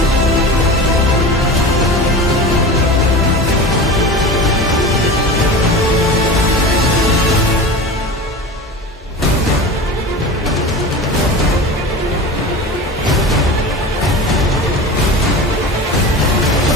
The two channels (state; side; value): normal; both; correlation 0.32